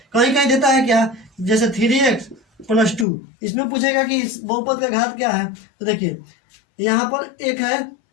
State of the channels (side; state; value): right; drops out; at 3.1 s